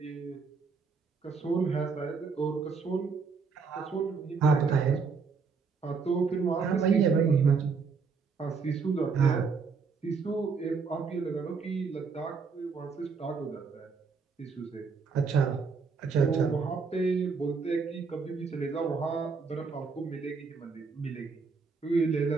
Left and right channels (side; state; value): left; quieter; 5.1 dB